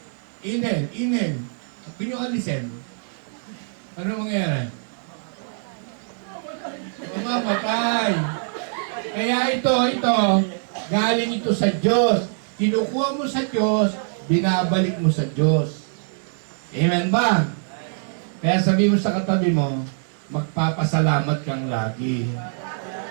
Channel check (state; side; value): silent; left; digital silence